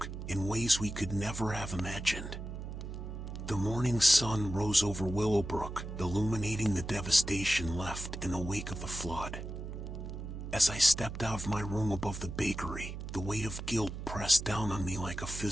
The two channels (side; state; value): right; noise; hum, 8 dB below the sound